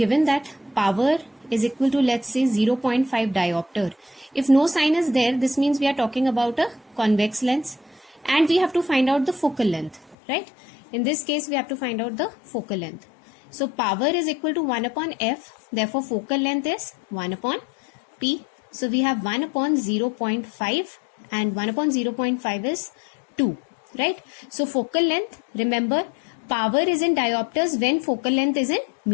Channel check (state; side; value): drops out; right; at 10.2 s